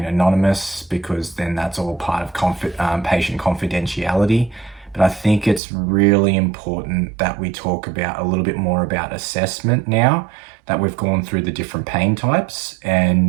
anonymous because then that's all part of patient confidentiality. But I think it's really important that we talk about a little bit more about assessment now that we've gone through the different pain types.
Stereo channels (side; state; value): left; drops out; at 5.6 s